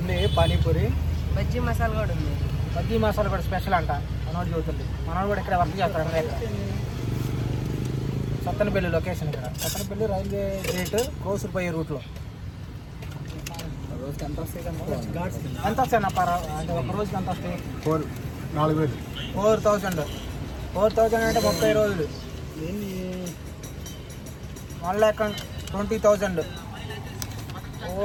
పానీపూరి, బజ్జీ మసాలా కూడా ఉంది. బజ్జీ మసాలా కూడా స్పెషల్ అంట. మనోడు చదువుతుంది. మనోడు కూడా ఇక్కడ వర్క్ చేస్తాడు అన్నమాట. సత్తెనపల్లి లొకేషన్ ఇక్కడ. సత్తెనపల్లి రైల్వే గేట్ క్రోసూరు పోయే రూట్లో. ఎంత వస్తాయి అంటే ఒక రోజుకి ఎంత వస్తాయి? 4,000. 4,000 అంటే 30 రోజులు. 1,20,000. ఓ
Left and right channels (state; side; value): identical; both; correlation 1.00